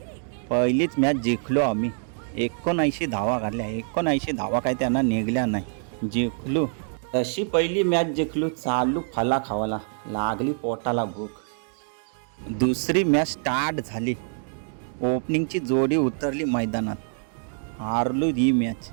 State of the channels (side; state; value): left; silent; 56 dB below the other